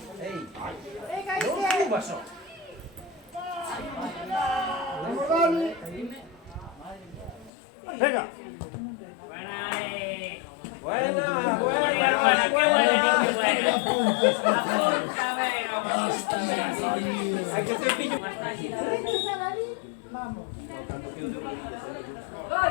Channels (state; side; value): drops out; right; at 7.5 s